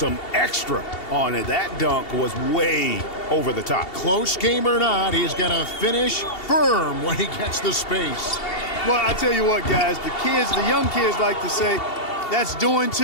extra on it. That dunk was way over the top. Close game or not, he's going to finish firm when he gets the space. Well, I tell you what, guys, the young kids like to say, that's doing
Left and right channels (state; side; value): late; right; 2.7 ms